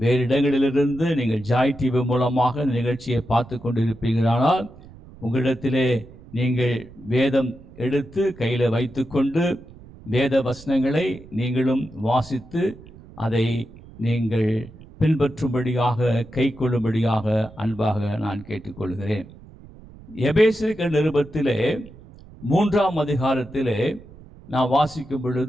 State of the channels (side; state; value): right; noise; rumble, 20 dB below the sound